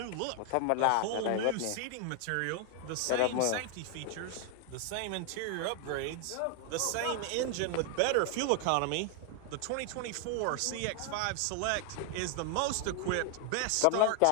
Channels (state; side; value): different; both; correlation 0.00